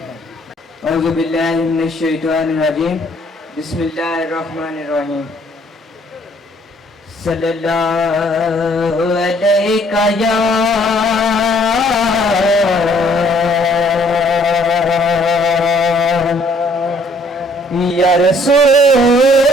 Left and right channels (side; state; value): both; normal; correlation 0.62